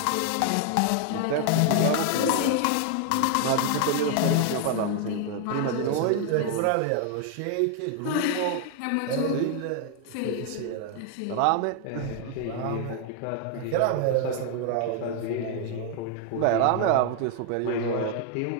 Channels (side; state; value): both; different; correlation 0.00